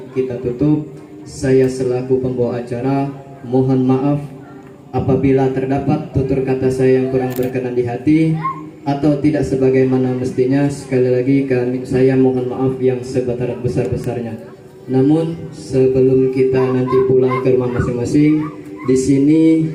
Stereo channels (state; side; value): identical; both; correlation 1.00